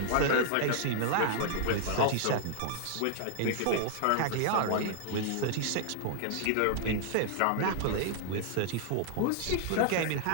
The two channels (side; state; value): both; different; correlation -0.01